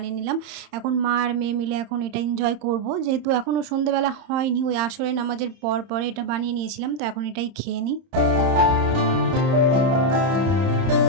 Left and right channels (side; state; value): left; late; 30 ms